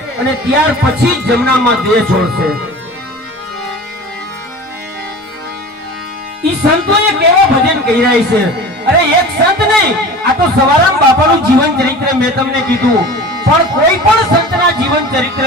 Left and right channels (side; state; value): both; normal; correlation 0.37